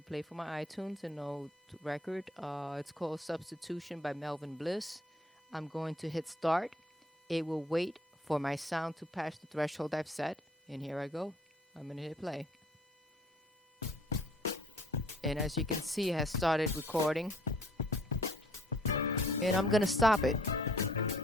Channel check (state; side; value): normal; both; correlation 0.58